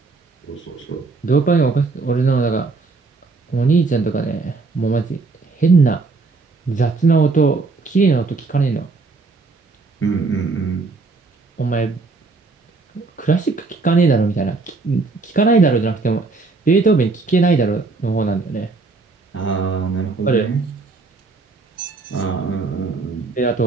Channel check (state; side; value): quieter; left; 3.9 dB